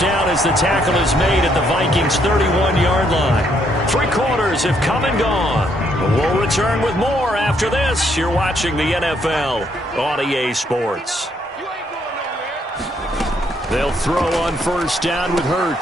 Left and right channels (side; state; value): both; normal; correlation 0.71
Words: down as the tackle is made at the Vikings' 31-yard line. 3 quarters have come and gone. We'll return with more after this. You're watching the NFL on EA Sports. They'll throw on first down with